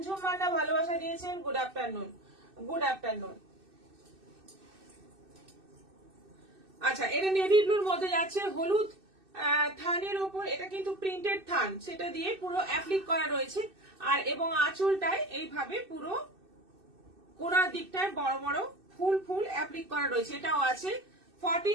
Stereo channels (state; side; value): late; left; 2.6 ms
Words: মান্না ভালোবাসা দিয়েছেন, গুড আফটারনুন। Good afternoon. আচ্ছা, এটা নেভি ব্লুর মধ্যে যাচ্ছে হলুদ থানের ওপর, এটা কিন্তু প্রিন্টেড থান, সেটা দিয়ে পুরো অ্যাপ্লিক করা রয়েছে। আর এবং আঁচলটায় এইভাবে পুরো কোনার দিকটায় বড় বড় ফুল ফুল অ্যাপ্লিক করা রয়েছে। এটাও আছে